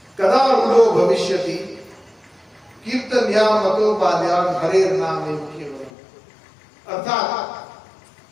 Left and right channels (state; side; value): drops out; right; at 5.9 s